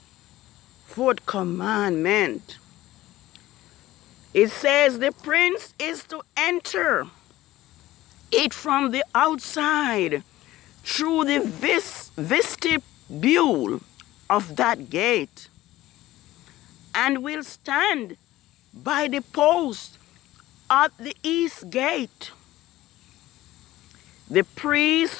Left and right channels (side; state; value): right; quieter; 16.1 dB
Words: fourth commandment. It says the prince is to enter it from the outside through the vestibule of that gate, and will stand by the post at the east gate. The